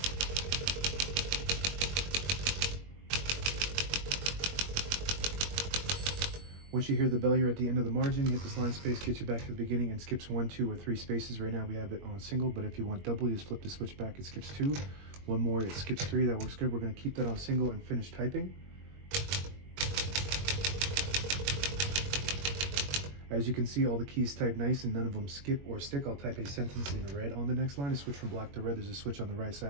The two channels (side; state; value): left; late; 21 ms